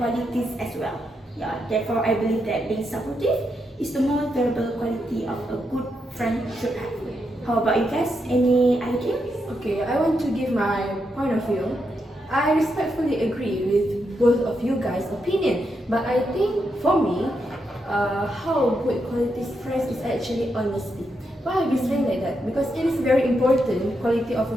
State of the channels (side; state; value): both; normal; correlation 0.82